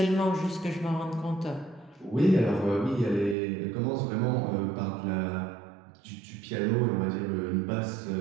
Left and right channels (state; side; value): drops out; left; at 3.4 s